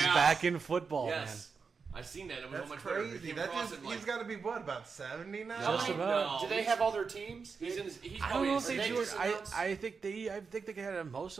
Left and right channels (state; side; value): quieter; left; 5.3 dB